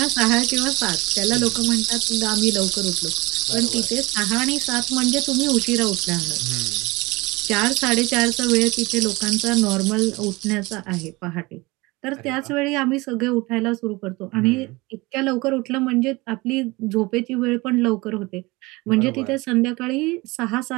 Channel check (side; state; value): left; quieter; 23.1 dB